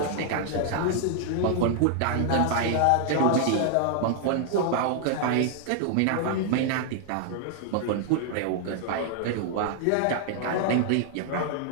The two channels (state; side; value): different; both; correlation 0.00